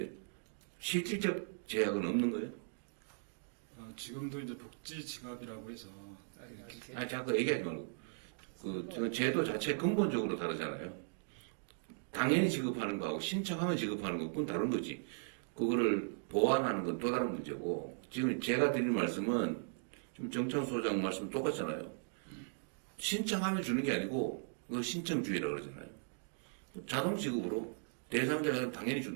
실질적 제약은 없는 거예요? 지금도 이제 복지 지갑이라고 해서 아니 자꾸 얘기하지 말고 그 제도 자체 근본적으로 다르잖아요. 당연히 지급하는 거하고 신청하면 지급하는 거 그건 다른 거지. 그거를 보완하는 건 또 다른 문제고 지금 제가 드린 말씀은 좀 정창 소장 말씀 똑같잖아요. 신청하면 주는 게 아니고 그거 신청주의라고 그러잖아요. 자동 지급으로 대상자가 당연히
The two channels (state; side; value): silent; left; digital silence